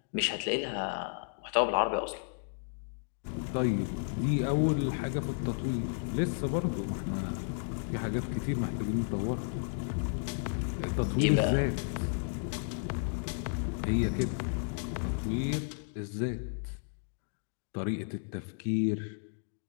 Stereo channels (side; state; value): right; silent; digital silence